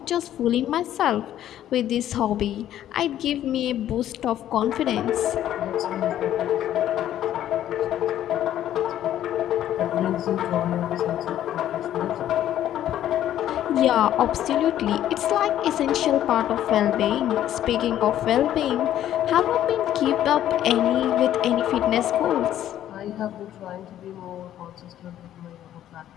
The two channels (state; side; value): quieter; right; 11.8 dB